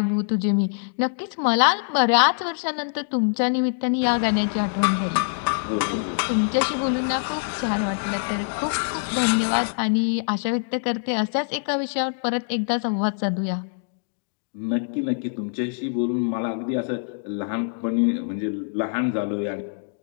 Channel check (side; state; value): right; silent; digital silence